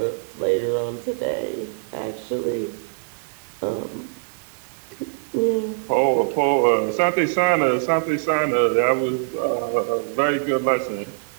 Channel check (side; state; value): left; silent; digital silence